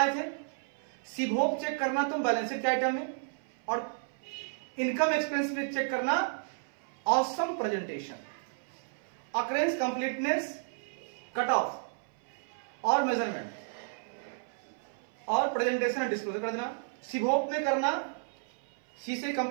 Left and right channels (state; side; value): silent; left; 56 dB below the other